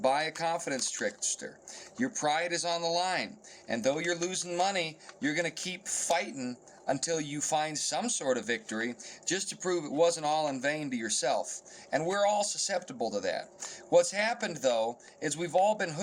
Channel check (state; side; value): identical; both; correlation 1.00